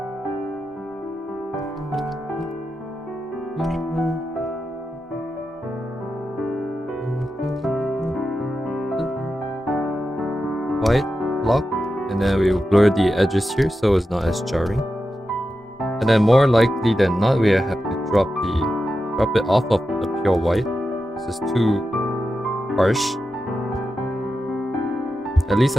White block, and then we will blur the edges here so it's not as jarring. And then more likely than not, we have to drop it off of the pure white. This is too harsh, at least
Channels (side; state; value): both; normal; correlation 0.90